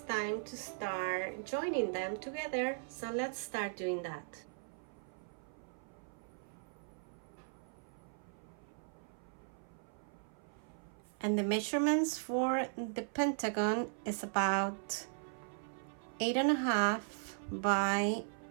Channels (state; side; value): silent; left; 52 dB below the other